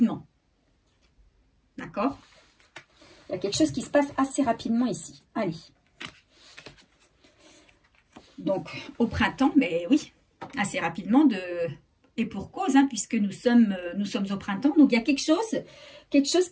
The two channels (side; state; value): both; identical; correlation 1.00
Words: D'accord? Il y a quelque chose qui se passe assez rapidement ici. Allez. Donc, au printemps, mais oui, assez rapidement et pour cause, hein, puisque nous sommes au printemps. Donc, il y a quelque chose